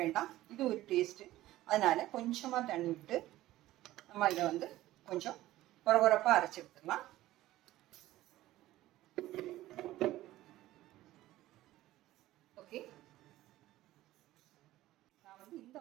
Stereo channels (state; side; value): quieter; left; 15.7 dB